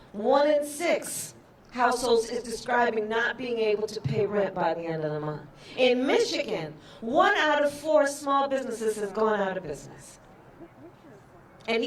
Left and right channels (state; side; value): identical; both; correlation 1.00